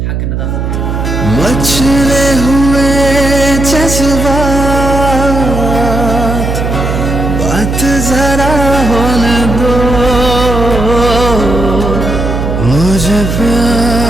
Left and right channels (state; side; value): noise; right; hum, 2 dB below the sound